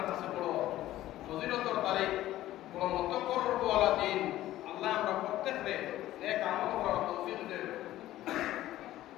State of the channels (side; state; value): right; quieter; 14.6 dB